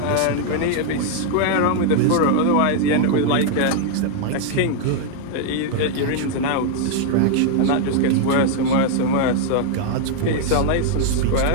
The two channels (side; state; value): both; different; correlation 0.00